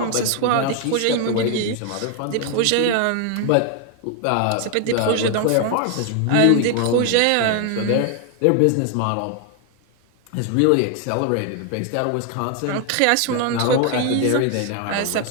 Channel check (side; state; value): both; different; correlation 0.00